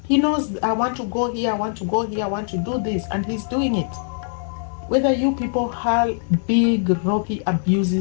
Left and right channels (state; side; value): silent; right; digital silence